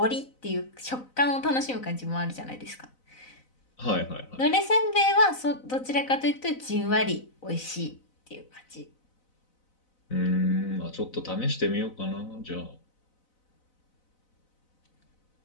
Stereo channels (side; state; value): right; late; 4.0 ms